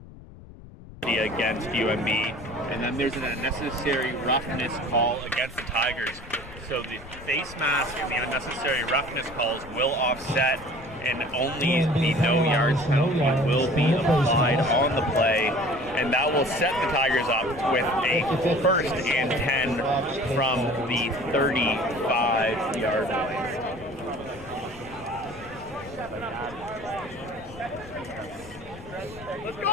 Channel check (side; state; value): left; noise; rumble, 18 dB below the sound